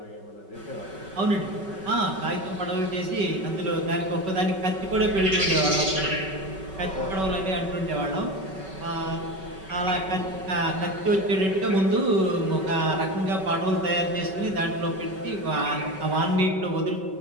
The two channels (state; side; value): late; left; 5.3 ms